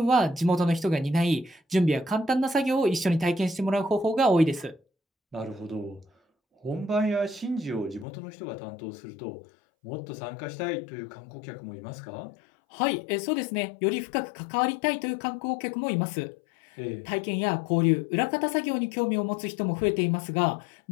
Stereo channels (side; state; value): right; drops out; at 8.1 s